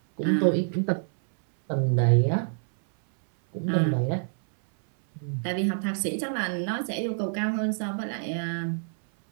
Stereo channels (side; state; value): left; silent; 60 dB below the other